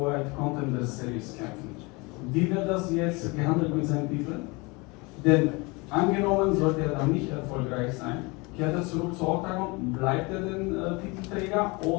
White Contender Series kämpft, wie wird das jetzt gehandelt mit seinem Titel? Denn angenommen, sollte er dann nicht erfolgreich sein, kehrt er zurück zu Oktagon, bleibt er den Titelträger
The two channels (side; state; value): right; quieter; 26.8 dB